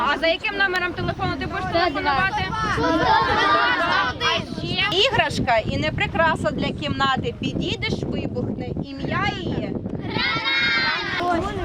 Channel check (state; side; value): identical; both; correlation 1.00